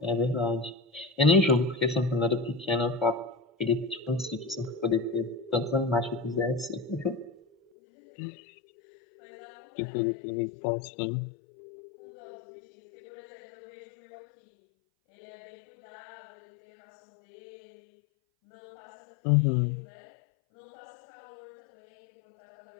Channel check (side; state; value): right; drops out; at 7.6 s